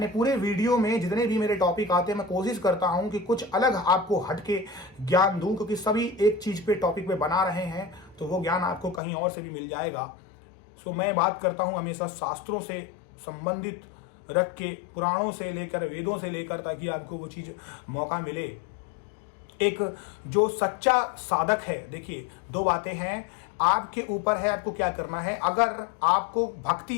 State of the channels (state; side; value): drops out; right; at 9.0 s